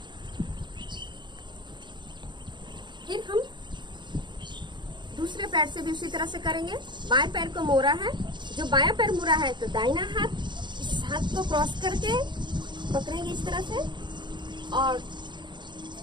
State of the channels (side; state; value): left; late; 0.22 ms